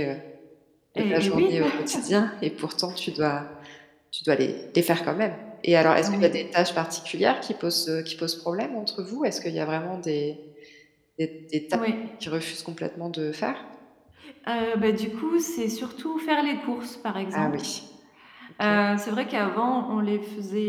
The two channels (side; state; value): both; identical; correlation 1.00